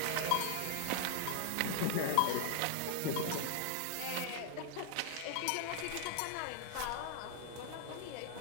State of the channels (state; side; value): different; both; correlation 0.00